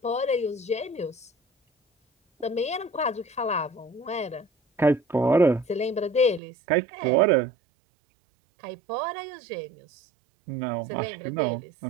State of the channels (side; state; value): left; drops out; at 6.4 s